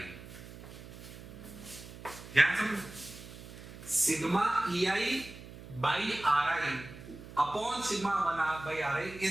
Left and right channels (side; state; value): right; noise; hum, 15 dB below the sound